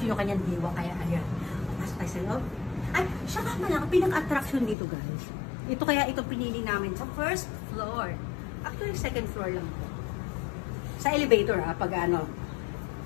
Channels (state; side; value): drops out; right; at 4.8 s